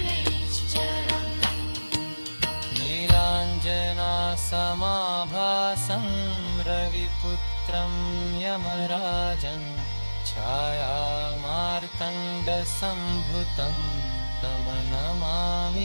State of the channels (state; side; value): inverted; both; correlation -1.00